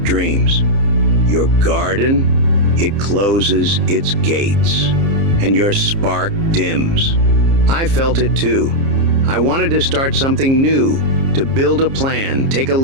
dreams. Your garden, it closes its gates, and your spark dims. I felt it too. I wanted to start something new, to build a plan, take a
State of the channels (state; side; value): late; left; 30 ms